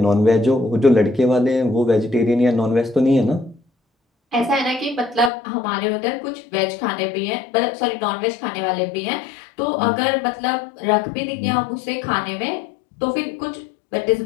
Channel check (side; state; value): right; drops out; at 5.3 s